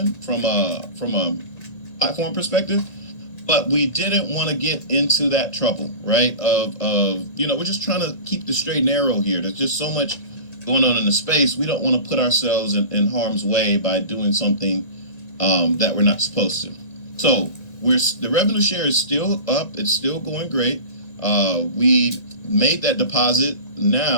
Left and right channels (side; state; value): right; late; 1.8 ms